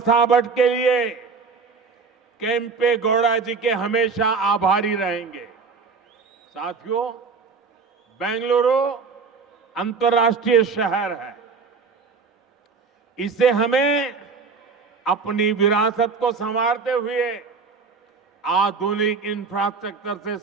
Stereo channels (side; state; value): left; quieter; 5.0 dB